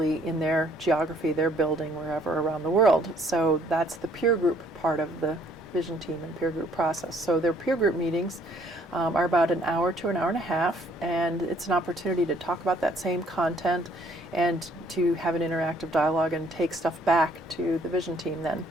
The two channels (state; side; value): normal; both; correlation 0.63